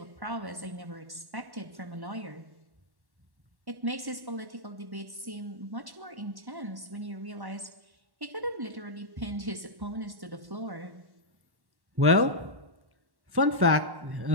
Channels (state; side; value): late; left; 1.1 ms